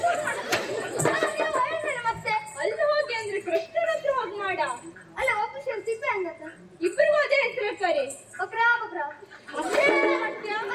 ಮತ್ತೆ ಅಲ್ಲಿ ಹೋಗಿ ಅಂದ್ರೆ ಕೃಷ್ಣನ ಹತ್ರ ಹೋಗಿ ಮಾಡ. ಅಲ್ಲ, ಒಬ್ಬ ಸೇರಿ ಸಿಪ್ಪೆ ಹಂಗತ್ತ? ಇಬ್ಬರಿಗೂ ಅದೇ ಹೆಸರು ಕರಿ. ಬಕ್ರ ಬಕ್ರ.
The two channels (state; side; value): identical; both; correlation 1.00